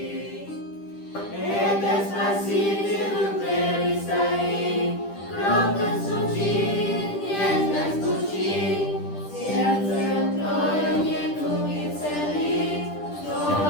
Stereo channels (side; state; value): right; late; 10 ms